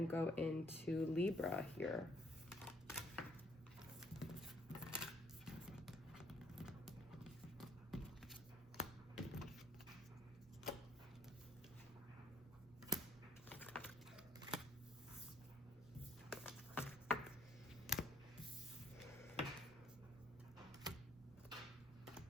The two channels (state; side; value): normal; both; correlation 0.64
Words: go into Libra here.